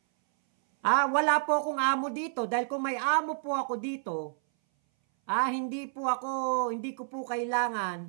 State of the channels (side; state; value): left; silent; 58 dB below the other